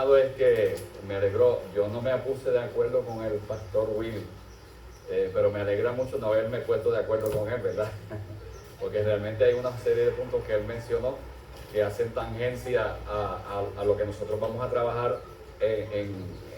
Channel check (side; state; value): both; identical; correlation 1.00